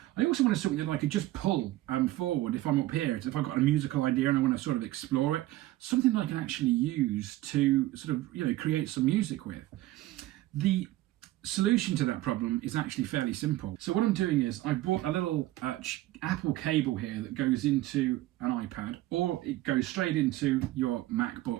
I also wanted something that I could just pull forward if I'm up here. If I've got a musical idea and I want to sort of explore it, something that I can actually use to sort of create some music with. The solution to that problem is actually fairly simple. So what I'm doing is I bought a little Apple cable here that goes into an iPad, or it goes straight into your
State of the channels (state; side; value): quieter; left; 16.5 dB